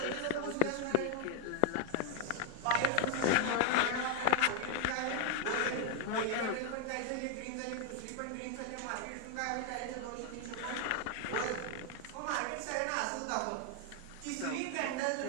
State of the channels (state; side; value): different; both; correlation 0.00